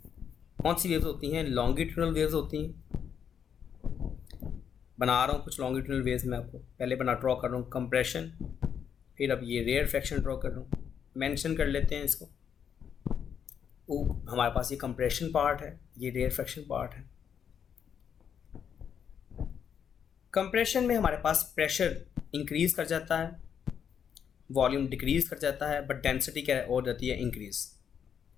कौन सी वेव्स होती हैं, लॉन्गिट्यूडनल वेव्स होती हैं। बना रहा हूँ कुछ लॉन्गिट्यूडनल वेव्स, मैं आपको पहले ड्रॉ कर रहा हूँ कंप्रेशन, फिर अब ये रेयर फ्रैक्शन ड्रॉ कर रहा हूँ। मेंशन कर लेते हैं इसको, वो हमारे पास ये कंप्रेशन पार्ट है, ये रेयर फ्रैक्शन पार्ट है। कंप्रेशन में हमारे पास प्रेशर इंक्रीज कर जाता है, वॉल्यूम डिक्रीज कर जाता है, बट डेंसिटी क्या हो जाती है, इंक्रीज।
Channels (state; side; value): quieter; right; 7.9 dB